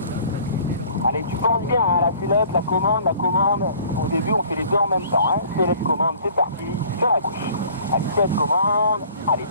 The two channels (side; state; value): both; inverted; correlation -0.52